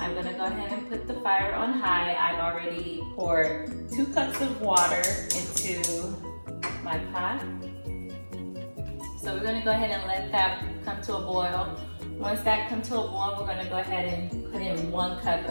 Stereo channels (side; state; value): both; inverted; correlation -1.00